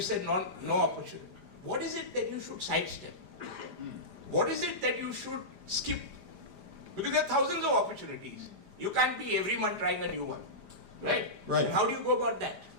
said, no opportunity. What is it that you should sidestep? What is it that you should skip? Because there are thousands of opportunities. You can't be every month trying a new one, right? Right. And how do you go about that?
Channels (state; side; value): late; left; 5.0 ms